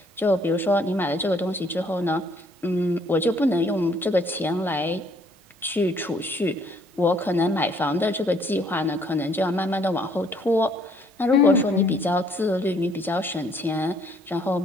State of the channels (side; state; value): both; normal; correlation 0.63